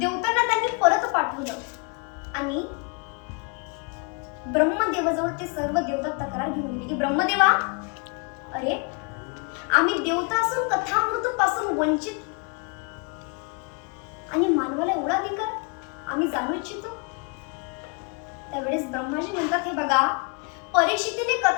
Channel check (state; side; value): quieter; right; 34.6 dB